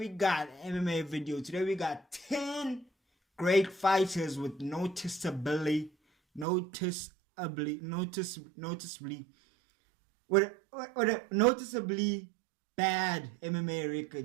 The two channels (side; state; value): left; drops out; at 6.5 s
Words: got MMA video. Today we got 10 great fighters with noticeably with a noticeably bad MMA